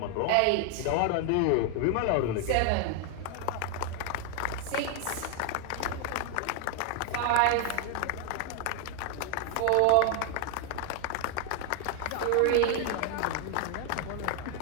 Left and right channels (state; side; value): different; both; correlation 0.00